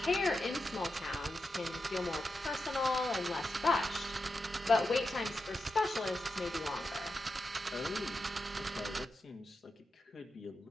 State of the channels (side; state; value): both; normal; correlation 0.89